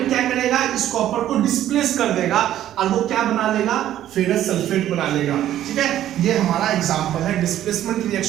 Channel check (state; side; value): quieter; left; 12.2 dB